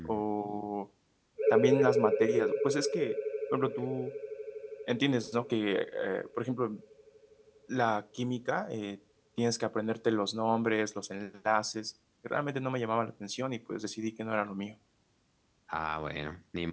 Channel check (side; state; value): both; identical; correlation 1.00